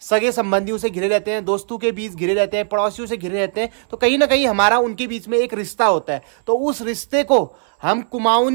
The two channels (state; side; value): silent; left; 61 dB below the other